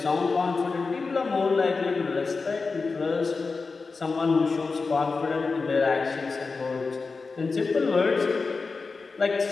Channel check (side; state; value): right; quieter; 4.3 dB